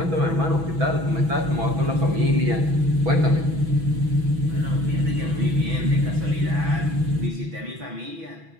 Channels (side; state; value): left; late; 6.1 ms